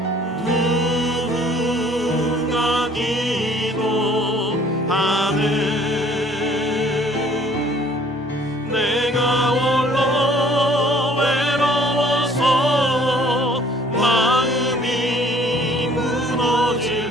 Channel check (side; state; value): both; normal; correlation 0.57